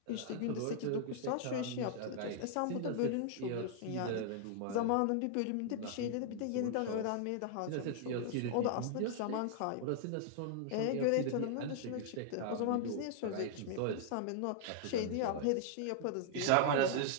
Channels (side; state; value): both; different; correlation 0.00